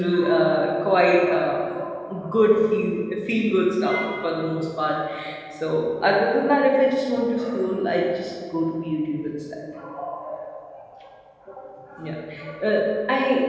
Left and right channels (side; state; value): both; identical; correlation 1.00